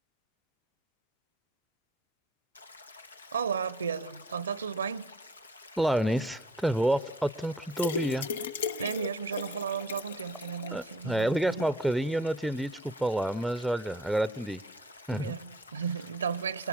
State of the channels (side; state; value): both; normal; correlation 0.52